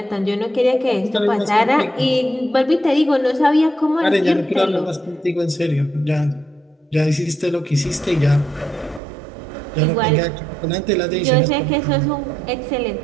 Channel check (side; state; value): left; drops out; at 9.0 s